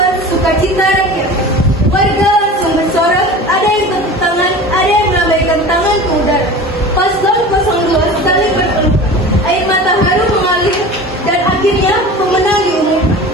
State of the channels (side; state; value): both; normal; correlation 0.36